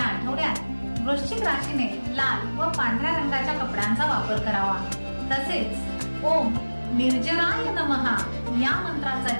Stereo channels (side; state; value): both; inverted; correlation -1.00